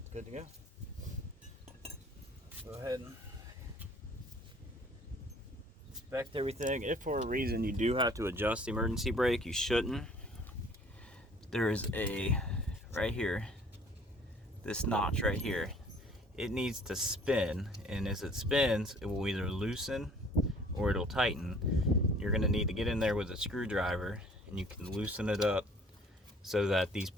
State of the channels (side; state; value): both; normal; correlation 0.54